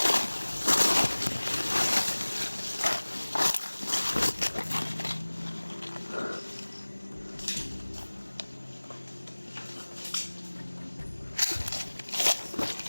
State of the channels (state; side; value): inverted; both; correlation -1.00